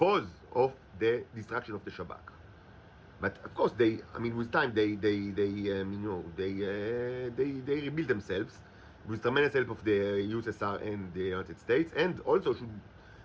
of the destruction of the Shabak. But of course, with time, they rebuilt themselves with tremendous help of the USSR and the United States, and also should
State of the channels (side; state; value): both; identical; correlation 1.00